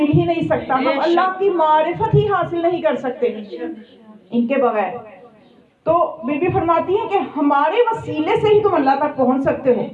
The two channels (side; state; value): both; identical; correlation 1.00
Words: ہی نہیں سکتا، ہم اللہ کی معرفت ہی حاصل نہیں کر سکتے ان کے بغیر. تو بی بی فرماتی ہیں کہ ہمارے وسیلے سے ہی تم اللہ تک پہنچ سکتے ہو.